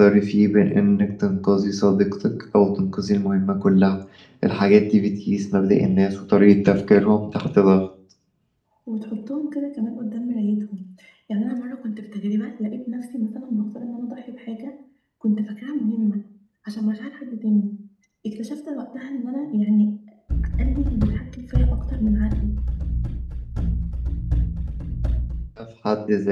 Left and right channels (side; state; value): both; identical; correlation 1.00